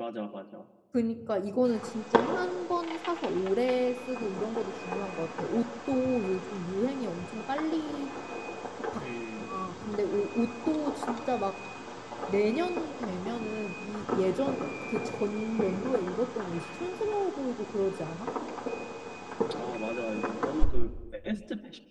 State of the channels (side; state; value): both; identical; correlation 1.00